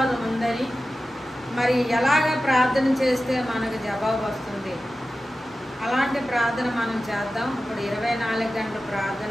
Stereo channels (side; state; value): both; normal; correlation 0.94